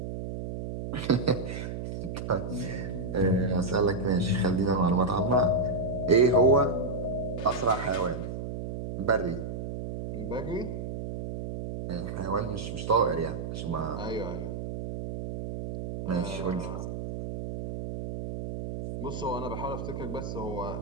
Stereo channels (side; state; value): right; noise; hum, 6 dB below the sound